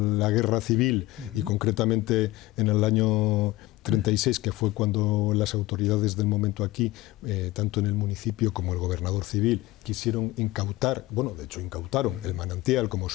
guerra civil y concretamente en el año 36, que fue cuando las autoridades del momento aquí, tanto en el municipio como el gobernador civil, quisieron incautar, bueno, de hecho incautaron el manantial, como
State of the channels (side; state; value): right; quieter; 18.2 dB